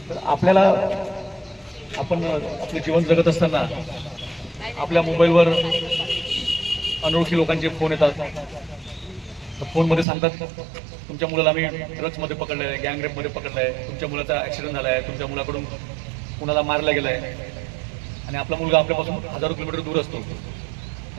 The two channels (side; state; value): left; drops out; at 10.1 s